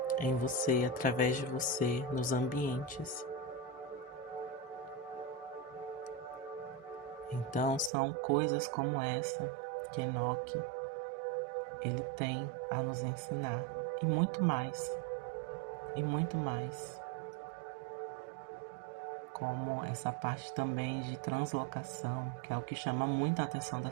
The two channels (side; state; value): left; drops out; at 7.9 s